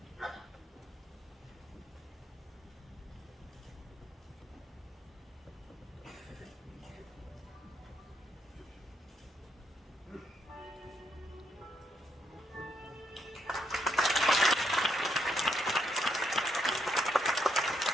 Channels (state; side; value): normal; both; correlation 0.77